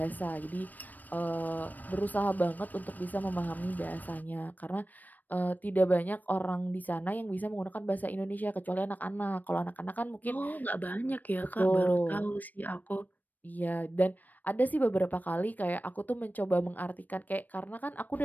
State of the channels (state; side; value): late; right; 0.085 ms